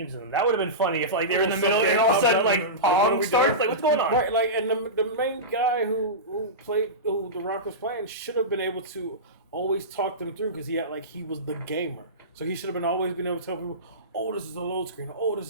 in them. That would have been funny if like they were in the middle and all of a sudden like Pong starts. Like what's going on? Right, like and the main guy who The Rock was playing should have been able to always talk them through, because he was the gamer. So he should have always been able to tell people, oh, this is a load screen, oh,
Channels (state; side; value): normal; both; correlation -0.18